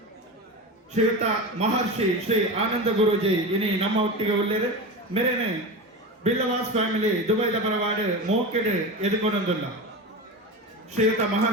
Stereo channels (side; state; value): both; normal; correlation 0.25